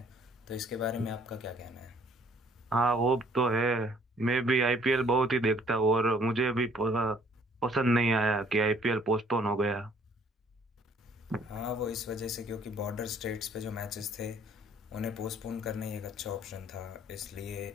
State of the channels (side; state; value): both; normal; correlation 0.60